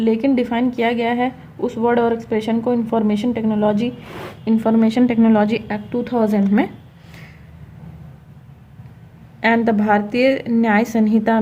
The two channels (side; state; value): both; identical; correlation 1.00